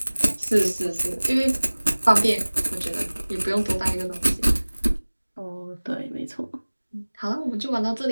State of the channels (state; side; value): inverted; both; correlation -1.00